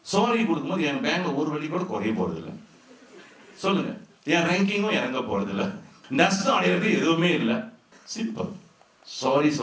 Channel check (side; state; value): both; identical; correlation 1.00